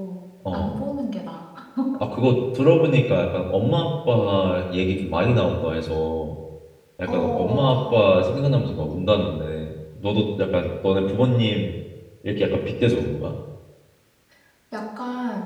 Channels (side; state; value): both; identical; correlation 1.00